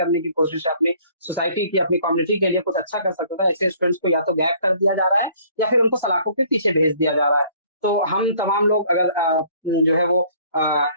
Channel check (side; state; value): both; inverted; correlation -0.57